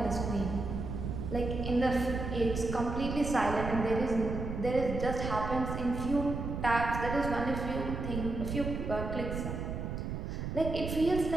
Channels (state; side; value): noise; right; rumble, 4 dB below the sound